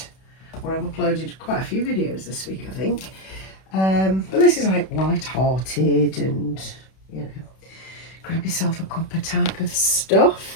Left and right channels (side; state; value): right; late; 31 ms